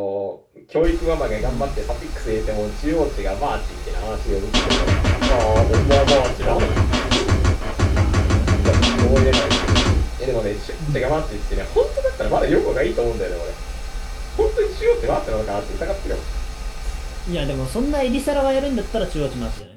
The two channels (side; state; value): both; identical; correlation 1.00